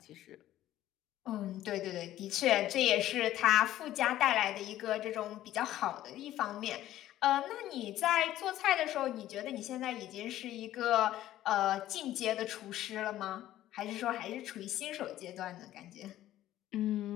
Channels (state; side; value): quieter; right; 13.6 dB